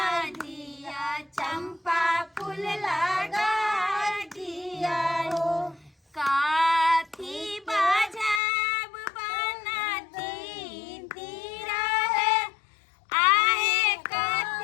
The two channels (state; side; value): drops out; right; at 8.4 s